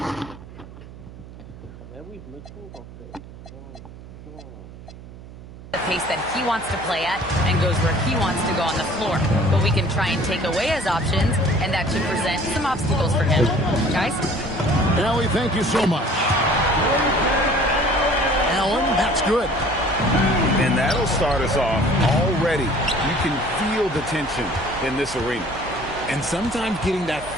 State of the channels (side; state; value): right; noise; hum, 16 dB below the sound